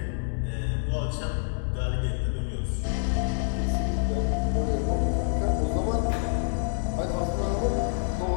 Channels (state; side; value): silent; right; digital silence